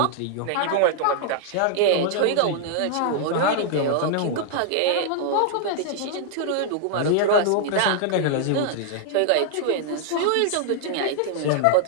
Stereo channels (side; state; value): both; different; correlation -0.01